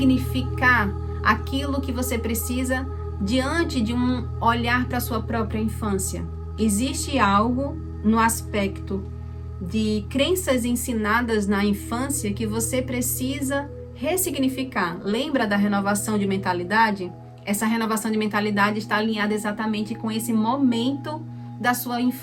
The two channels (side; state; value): both; identical; correlation 1.00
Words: aquilo que você precisa diante de um olhar para a sua própria infância. Existe algo no aspecto de crenças ensinadas na infância que você precisa ressignificar. Lembra da renovação de mentalidade? Essa renovação de mentalidade está alinhada exatamente com esse momento da sua